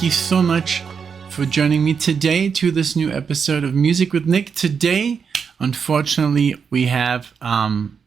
you so much for joining me today to this new episode of Music with Nick. Today, unfortunately, we have, I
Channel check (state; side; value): quieter; left; 6.3 dB